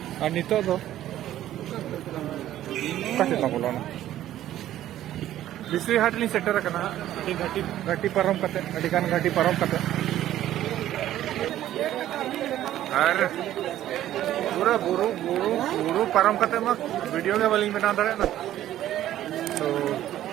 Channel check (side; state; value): left; quieter; 12.8 dB